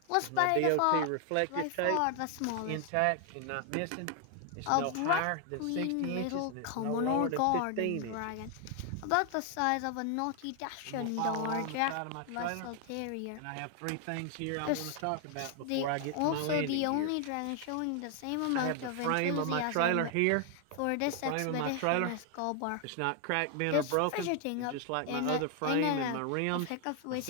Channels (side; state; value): both; different; correlation 0.00